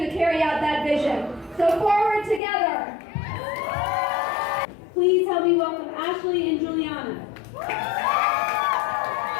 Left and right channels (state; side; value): drops out; right; at 2.4 s